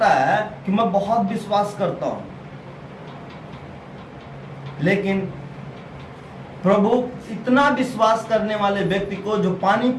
है कि मैं बहुत विश्वास करता हूं, लेकिन प्रभु इतना विश्वास करने वाले व्यक्ति को जो पानी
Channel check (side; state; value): both; identical; correlation 1.00